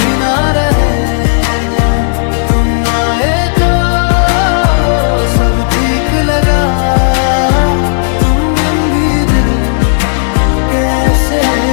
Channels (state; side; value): silent; right; digital silence